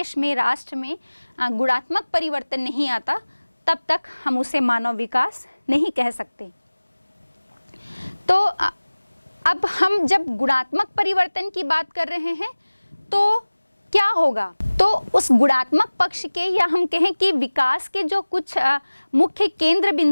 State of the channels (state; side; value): inverted; both; correlation -1.00